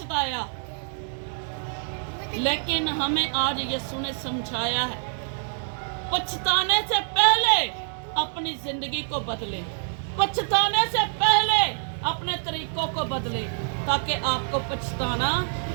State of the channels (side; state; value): left; silent; digital silence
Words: लेकिन हमें आज यीशु ने समझाया है, पछताने से पहले अपनी जिंदगी को बदले, पछताने से पहले अपने तरीकों को बदले, ताकि आपको पछताना